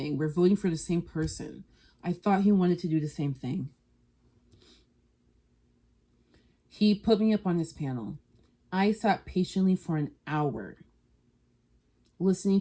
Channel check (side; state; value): both; identical; correlation 1.00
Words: We're voting for the same person. I thought he wanted to do the same thing. He put me up on his panel. I sat patiently for an hour listening